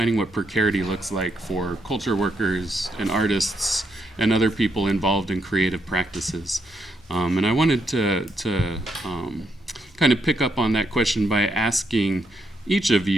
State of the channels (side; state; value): both; normal; correlation 0.79